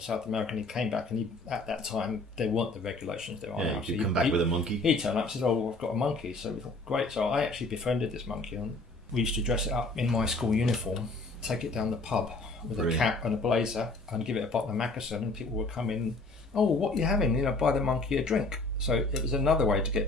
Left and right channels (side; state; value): right; quieter; 3.0 dB